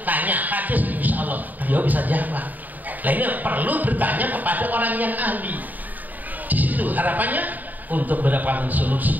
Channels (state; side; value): late; left; 0.083 ms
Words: tanya hadis, insya Allah beliau bisa jawab. Nah, ini perlu bertanya kepada orang yang ahli. Di situ harapannya untuk mendapatkan